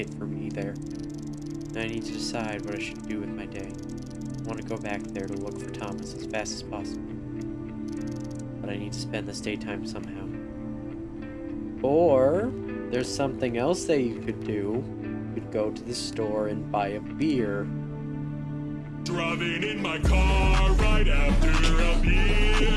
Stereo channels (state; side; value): identical; both; correlation 1.00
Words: for me there. And I need to decide what I should do with my day. I want to go back there to look for Thomas as fast as possible. But I need to spend this daytime somehow. Or, there's something else that you could do. You could go to the store and buy a beer. Driving in my car right after a beer.